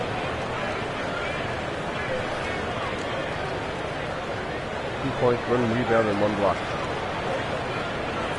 points, 1 rebound, and 1 block.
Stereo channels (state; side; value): identical; both; correlation 1.00